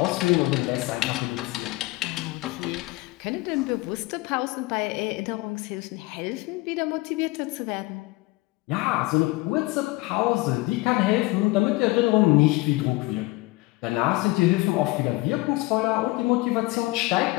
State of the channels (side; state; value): right; quieter; 21.7 dB